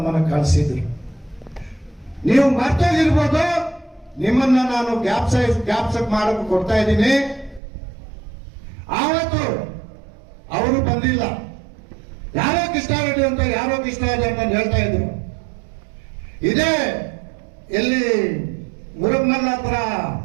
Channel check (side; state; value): left; drops out; at 7.6 s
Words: ಕಳಿಸಿದ್ರು. ನೀವು ಮರ್ತೋಗಿರ್ಬೋದು, ನಿಮ್ಮನ್ನ ನಾನು ಜ್ಞಾಪಕ ಮಾಡಕ್ಕೆ ಕೊಡ್ತಾ ಇದ್ದೀನಿ. ಆವತ್ತು ಅವರು ಬಂದಿಲ್ಲ. ಯಾರೋ ಕೃಷ್ಣಾರೆಡ್ಡಿ ಅಂತ ಯಾರೋ ಕೃಷ್ಣಾರೆಡ್ಡಿ ಅಂತ ಹೇಳ್ತಾ ಇದ್ರು. ಇದೇ ಎಲ್ಲಿ ಮುರುಗಮಲ್ಲ ಹತ್ರ